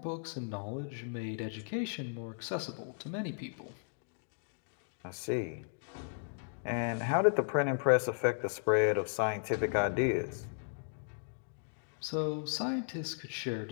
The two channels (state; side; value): silent; right; digital silence